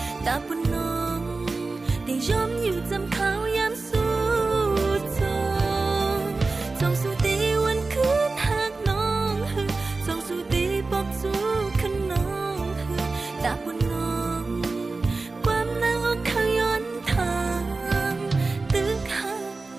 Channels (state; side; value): quieter; left; 3.7 dB